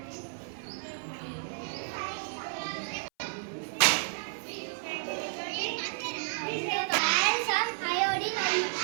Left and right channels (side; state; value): left; silent; 57 dB below the other